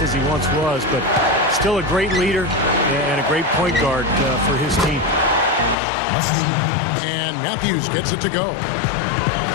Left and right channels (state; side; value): drops out; right; at 5.8 s